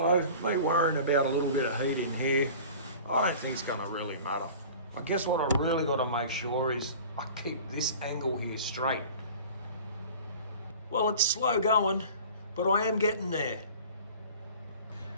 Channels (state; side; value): inverted; both; correlation -0.42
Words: me worrying about a little bit of heat in here, I don't think it's gonna really matter. I guess what I really gotta make sure is I keep this angle here straight. Well, it's slow going, but I am getting there.